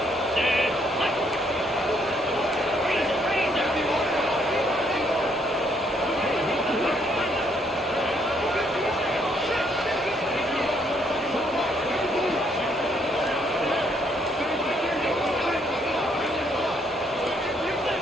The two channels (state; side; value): normal; both; correlation 0.69